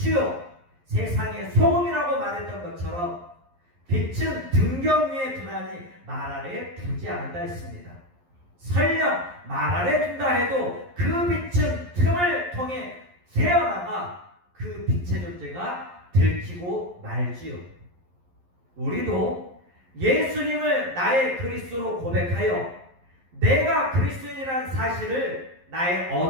세상의 소금이라고 말했던 것처럼, 빛은 등경 위에 두나니 말 아래에 두지 않는다 했습니다. 설령 말 아래 둔다 해도 그 빛은 틈을 통해 새어나가 그 빛의 존재가 들키고 말지요. 우리도 예수님을 나의 그리스도로 고백하여 내가 그리스도인이라는 사실을 나의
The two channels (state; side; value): late; left; 11 ms